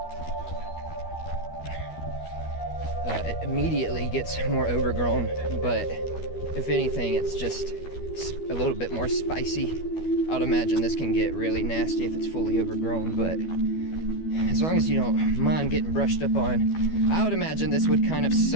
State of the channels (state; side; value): late; right; 12 ms